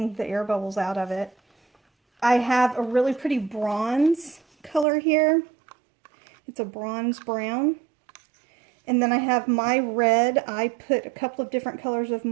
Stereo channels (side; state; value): left; drops out; at 4.9 s